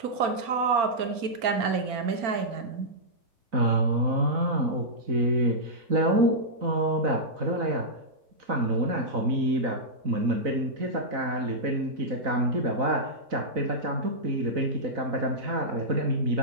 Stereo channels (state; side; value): late; left; 4.4 ms